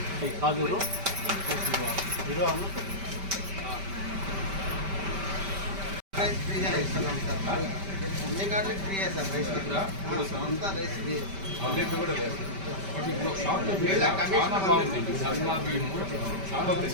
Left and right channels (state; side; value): late; left; 5.1 ms